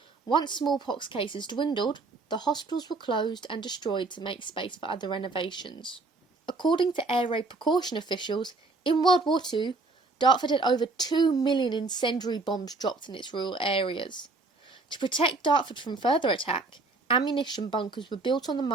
Once smallpox cases dwindled, the hospitals were closed and destroyed to make space for other renovations. According to air raid precaution officials, in World War II, Dartford had over 2 million incendiary bombs dropped in its rural areas. To protect Dartford from further attack, ammunition bunkers were built on the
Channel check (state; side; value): quieter; left; 3.6 dB